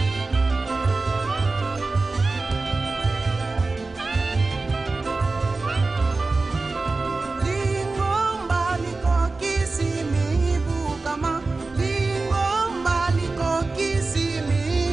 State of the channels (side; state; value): left; quieter; 3.6 dB